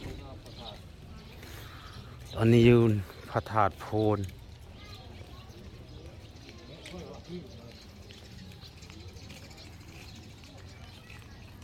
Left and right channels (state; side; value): identical; both; correlation 1.00